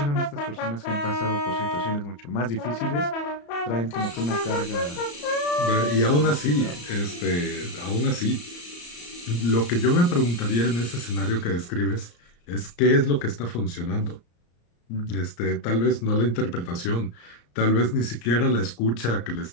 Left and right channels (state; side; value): late; right; 34 ms